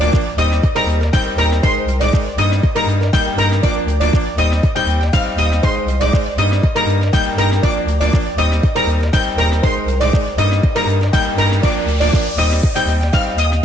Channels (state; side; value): normal; both; correlation 0.75